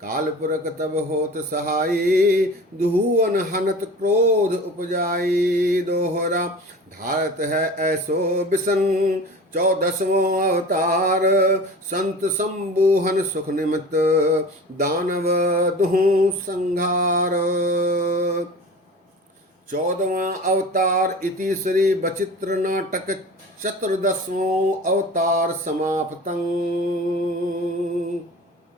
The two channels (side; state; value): both; normal; correlation 0.37